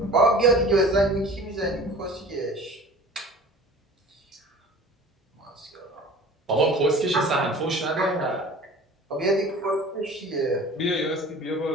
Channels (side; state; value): both; normal; correlation 0.43